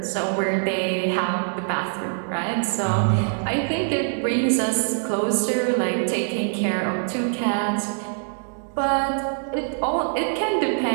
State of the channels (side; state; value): left; silent; digital silence